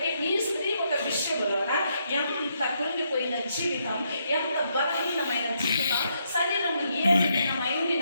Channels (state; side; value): inverted; both; correlation -0.76